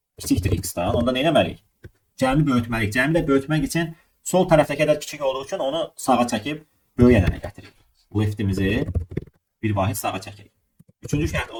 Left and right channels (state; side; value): identical; both; correlation 1.00